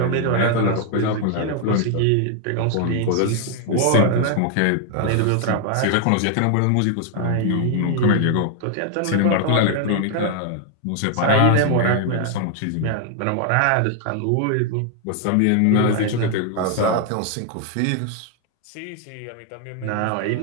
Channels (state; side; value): different; both; correlation 0.00